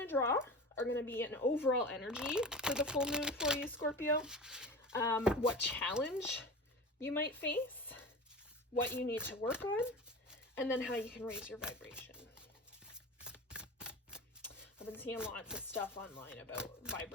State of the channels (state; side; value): normal; both; correlation 0.32